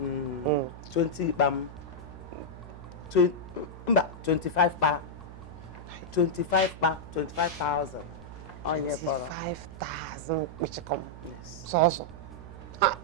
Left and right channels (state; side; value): noise; right; hum, 14 dB below the sound